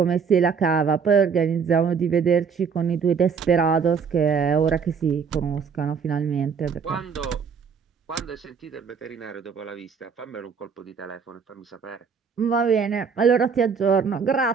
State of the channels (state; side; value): quieter; left; 6.1 dB